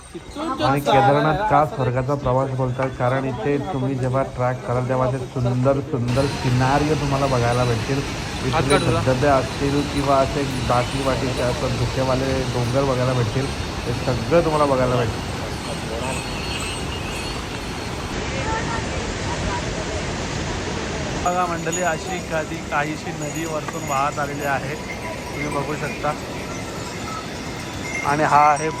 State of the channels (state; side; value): identical; both; correlation 1.00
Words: आणि केदारनाथ का स्वर्गाचा प्रवास बोलतात कारण इथे तुम्ही जेव्हा ट्रॅक कराल तेव्हा ते सुंदर सुंदर सिनारिओ तुम्हाला बघायला भेटतील. इथले धबधबे असतील किंवा असे बाकीचे असं धुकेवाले डोंगर बघायला भेटतील. हे सगळं तुम्हाला बघायला भेटेल. बघा मंडळी अशी काहीशी नदी वरतून वाहत आलेली आहे. तुम्ही बघू शकता. आणि हा आहे